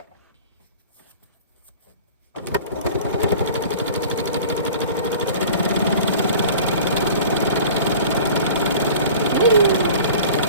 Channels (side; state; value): both; inverted; correlation -0.42